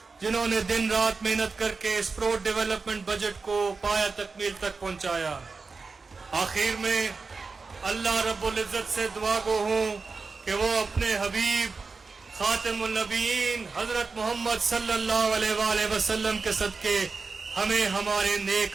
जिन्होंने दिन रात मेहनत करके इस प्रो डेवलपमेंट बजट को पाया तकमील तक पहुँचाया। आखिर में अल्लाह रब्बुल इज़्ज़त से दुआ गो हूँ कि वो अपने हबीब खातिमुन नबीयीन हज़रत मोहम्मद सल्लल्लाहु अलैहि वसल्लम के सदके हमें हमारे नेक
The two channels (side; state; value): left; quieter; 4.4 dB